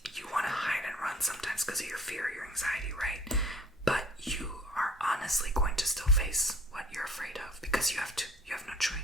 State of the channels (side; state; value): both; normal; correlation 0.51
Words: you want to hide and run sometimes because of your fear, your anxiety, right? But you are honestly going to still face what you're afraid of because you have to. You have no